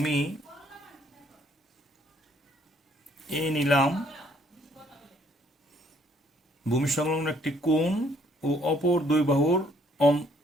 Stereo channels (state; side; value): normal; both; correlation 0.65